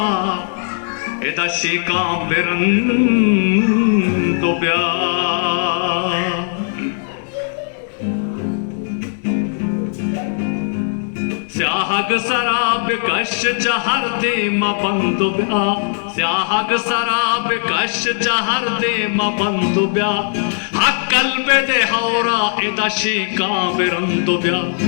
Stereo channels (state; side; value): silent; right; 64 dB below the other